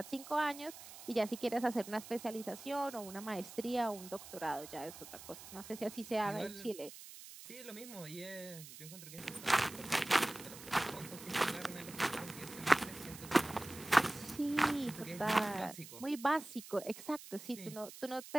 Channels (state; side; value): noise; right; hiss, 14 dB below the sound